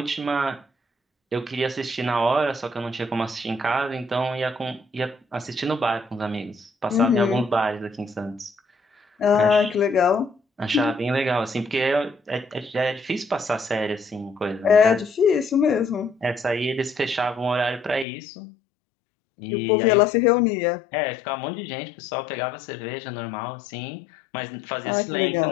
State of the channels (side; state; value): right; drops out; at 18.1 s